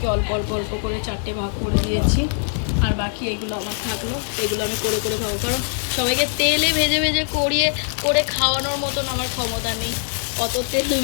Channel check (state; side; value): silent; right; digital silence